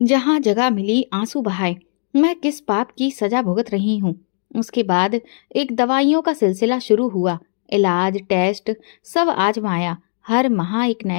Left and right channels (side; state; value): right; silent; digital silence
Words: जहां जगह मिली आंसू बहाए। मैं किस पाप की सजा भुगत रही हूँ। उसके बाद एक दवाइयों का सिलसिला शुरू हुआ। इलाज, टेस्ट, सब आजमाया। हर माह एक